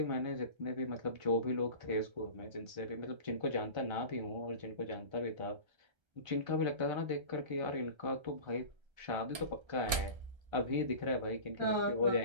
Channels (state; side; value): late; left; 1.3 ms